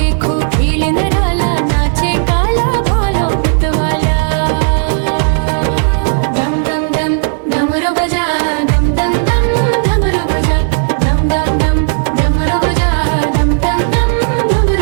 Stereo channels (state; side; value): silent; left; digital silence